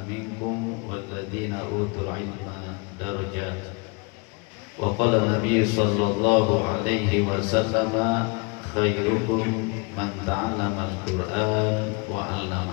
minkum walladhina utul ilma darajat. Wa qala Nabi sallallahu alaihi wasallam, khairukum man ta'allama al-Qur'an wa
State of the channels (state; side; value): quieter; right; 31.4 dB